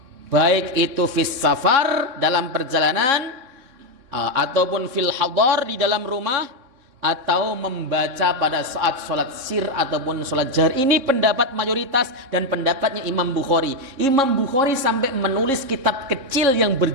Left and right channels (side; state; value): left; late; 3.7 ms